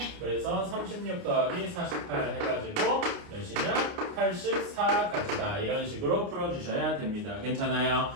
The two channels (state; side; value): late; left; 29 ms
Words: 그래서 36 더하기 48 해가지고 몇이냐? 84가지다. 이런 식으로 풀어주셔야 됩니다. 괜찮아요?